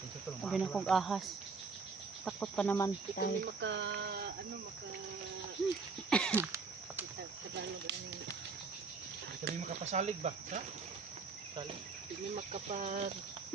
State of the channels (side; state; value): left; quieter; 4.6 dB